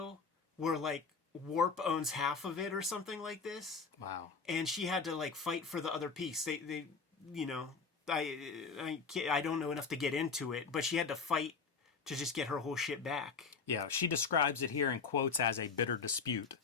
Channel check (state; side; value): quieter; right; 5.1 dB